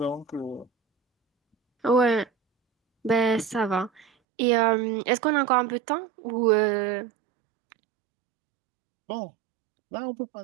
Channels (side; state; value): left; drops out; at 4.0 s